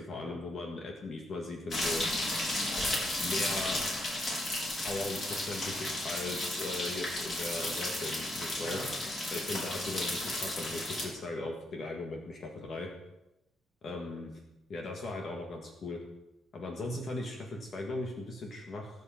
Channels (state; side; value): normal; both; correlation 0.76